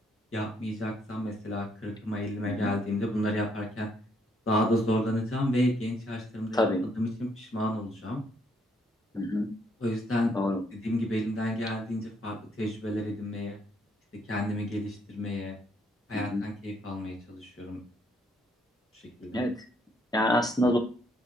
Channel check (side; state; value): both; normal; correlation 0.71